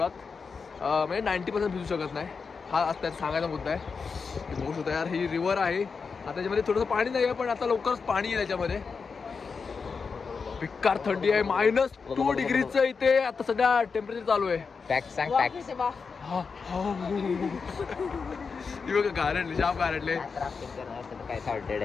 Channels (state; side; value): quieter; right; 5.2 dB